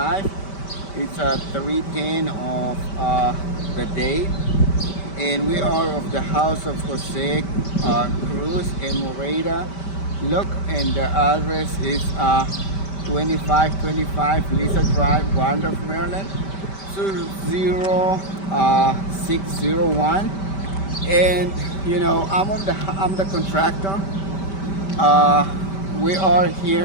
It's 3:10 of the day, and we are of the house of Jose Cruz in Moreda. Look, and the address is 2525 Lisa Drive, Wandorf, Maryland, 20601. And I'm the contractor. Uh, we are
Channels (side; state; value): right; late; 5.1 ms